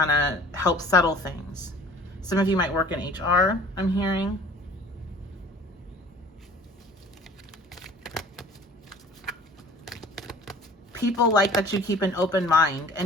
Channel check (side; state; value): both; normal; correlation 0.47